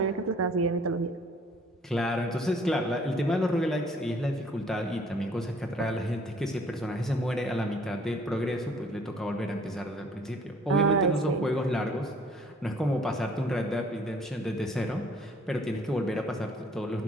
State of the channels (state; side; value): normal; both; correlation 0.58